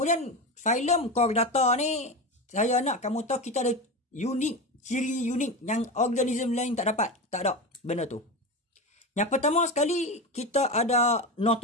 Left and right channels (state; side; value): normal; both; correlation 0.21